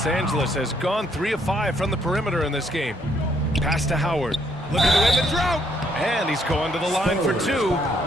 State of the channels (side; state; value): both; normal; correlation 0.70